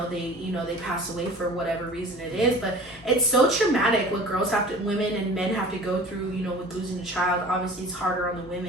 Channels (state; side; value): normal; both; correlation 0.42